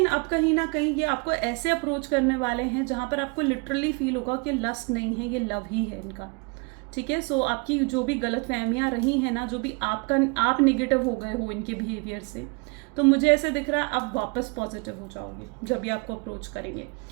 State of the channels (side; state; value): left; quieter; 31.4 dB